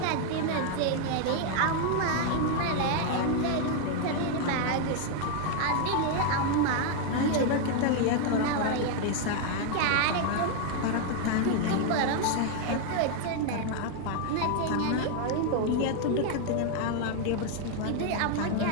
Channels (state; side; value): different; both; correlation 0.00